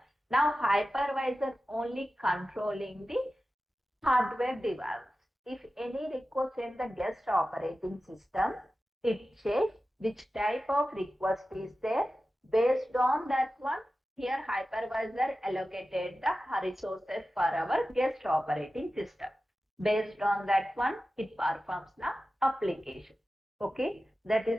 Now hypervisor only controlling the hardware device. If any request in the guest operating system, it checks which type of request is there. Based on that one, here hypervisor allocated the resources for our guest operating system. Based on that one, it performs the application. Okay, that is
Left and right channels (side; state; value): both; normal; correlation 0.94